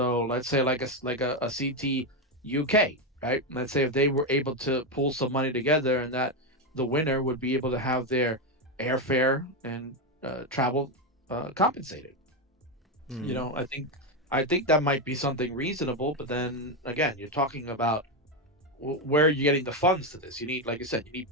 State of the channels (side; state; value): both; normal; correlation 0.09